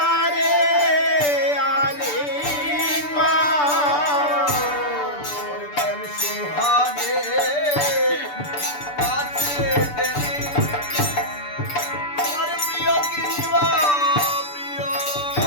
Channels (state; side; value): late; right; 6.8 ms